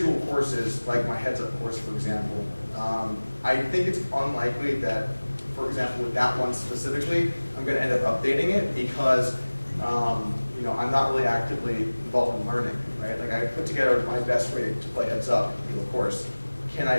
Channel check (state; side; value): inverted; both; correlation -1.00